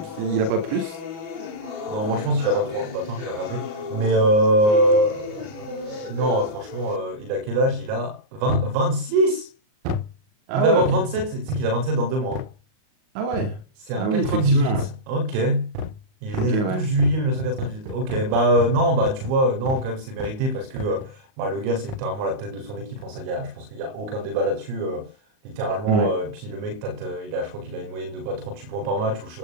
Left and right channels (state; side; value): late; left; 38 ms